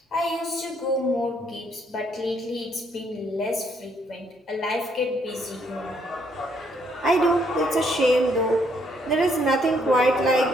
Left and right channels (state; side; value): normal; both; correlation 0.70